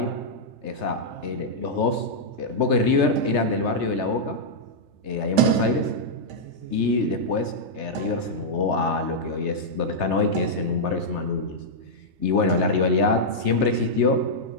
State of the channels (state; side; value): late; left; 3.3 ms